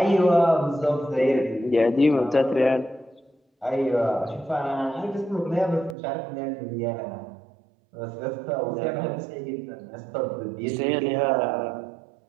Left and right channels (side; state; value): left; drops out; at 6.0 s